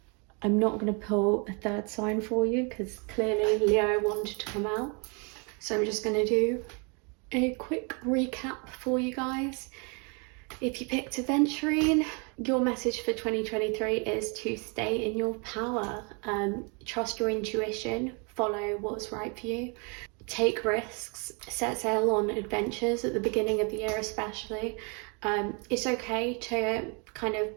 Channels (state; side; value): quieter; left; 34.2 dB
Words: I'm not going to pull a third sign for you because clearly Leo wanted to come out. So I'm just going to do a quick recap for you guys. If you picked Aventurine, your message for 2023 is to stay in your power. Trust your intuition, follow what's right for you. Take risks, set sail on adventures at the beginning of the year especially. It's okay to kind